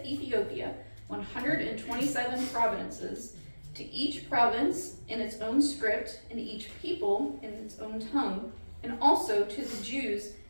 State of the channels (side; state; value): both; inverted; correlation -1.00